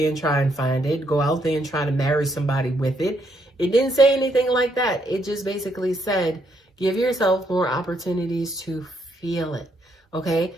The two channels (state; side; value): normal; both; correlation 0.74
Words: and try and find it. Go out there and try to marry somebody with it. It didn't say anything like that. It just basically said, give yourself more opportunities to feel it. Okay?